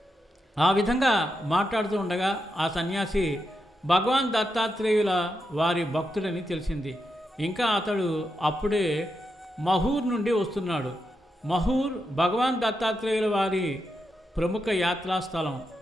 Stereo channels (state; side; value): normal; both; correlation 0.85